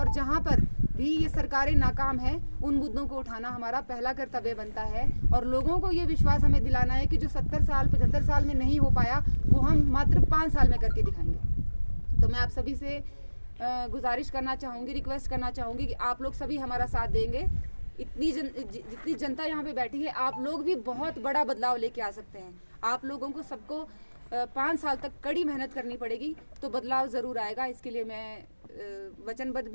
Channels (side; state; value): both; inverted; correlation -1.00